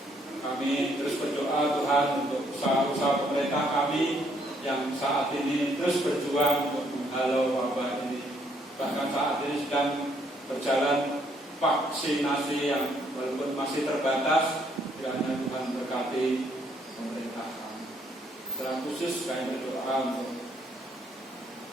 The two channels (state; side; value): normal; both; correlation 0.69